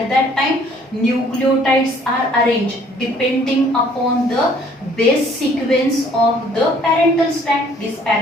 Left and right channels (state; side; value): normal; both; correlation 0.58